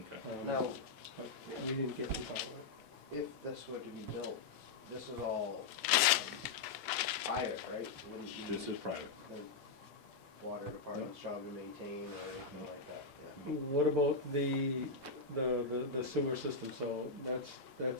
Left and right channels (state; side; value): quieter; right; 4.3 dB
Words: Okay. Now, But we didn't get to talk about it. if this were to be built, this is all private, right? Wouldn't be This is private. the water department's job to maintain or anything like that, yeah. What about the sewer system, so that's